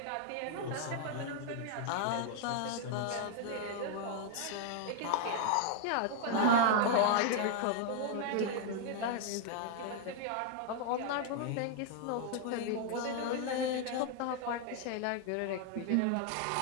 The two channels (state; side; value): different; both; correlation 0.00